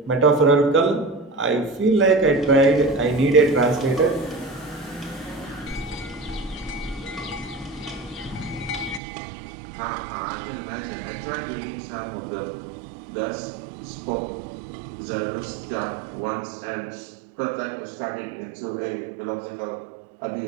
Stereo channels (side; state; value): left; drops out; at 9.0 s